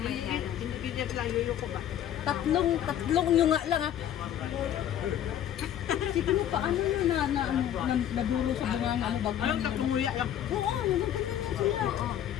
may yan. Hindi dyan lang yuyuko ba? Tatlong nyo nga lang ah. Siguro paano yun naduro sa bunga ano bago. Ayun, tatlumuya yan. Oo, nagaganda sila. Oo.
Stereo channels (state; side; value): quieter; right; 10.8 dB